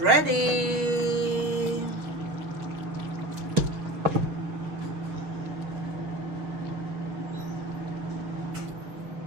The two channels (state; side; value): late; left; 6.3 ms